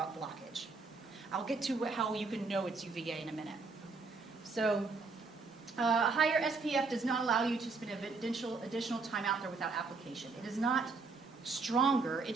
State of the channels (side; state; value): left; quieter; 4.2 dB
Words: I'll get to how you can know it's UVA in a minute. So higher SPF does not allow you to spend additional time out there without application. It is not stronger, it